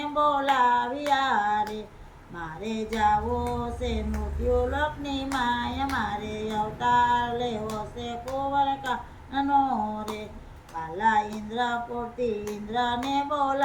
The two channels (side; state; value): both; identical; correlation 1.00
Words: બોલાવ્યા રે, મારે જાવો છે મૃત્યુલોકની માય, મારે અવતાર લેવો છે કુંવરકાનનો રે, વાલા ઇન્દ્રપુરથી ઇન્દ્રને